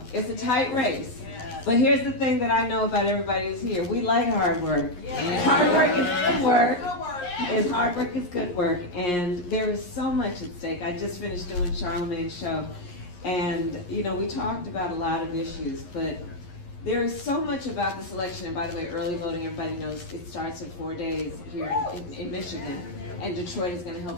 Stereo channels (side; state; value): right; late; 11 ms